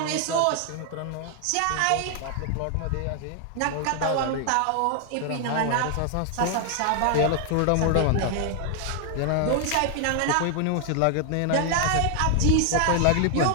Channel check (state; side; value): different; both; correlation 0.00